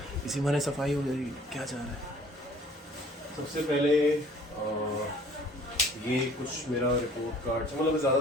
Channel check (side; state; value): both; normal; correlation 0.54